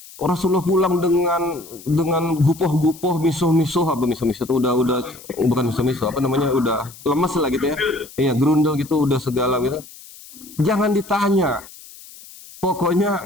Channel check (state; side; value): noise; left; hiss, 19 dB below the sound